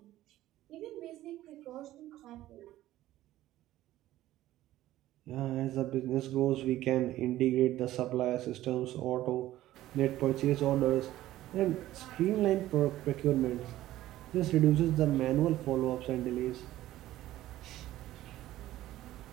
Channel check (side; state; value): left; quieter; 14.7 dB